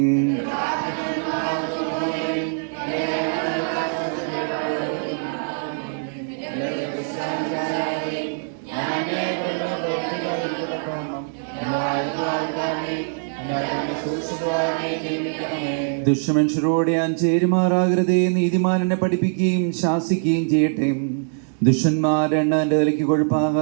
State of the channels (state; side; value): silent; left; digital silence